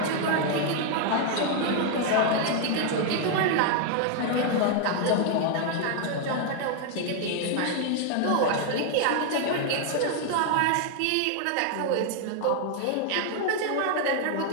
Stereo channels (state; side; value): different; both; correlation 0.00